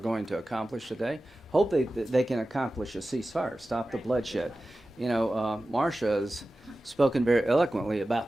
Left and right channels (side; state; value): both; normal; correlation 0.95